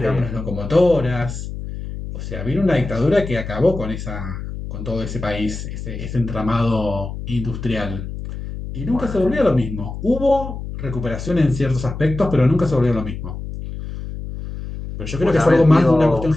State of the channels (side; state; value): left; noise; hum, 8 dB below the sound